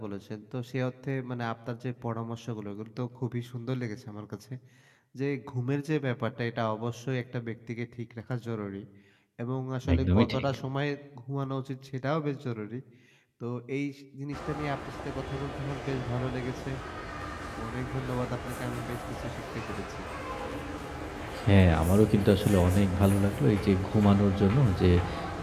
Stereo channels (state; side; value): identical; both; correlation 1.00